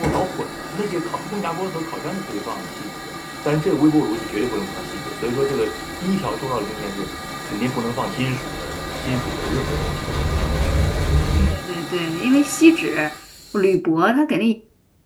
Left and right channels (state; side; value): identical; both; correlation 1.00